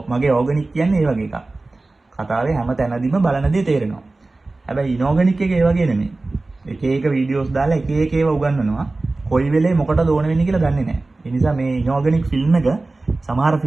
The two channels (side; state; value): left; quieter; 3.2 dB